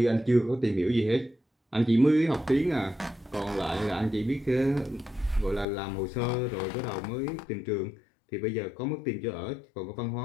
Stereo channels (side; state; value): right; drops out; at 5.7 s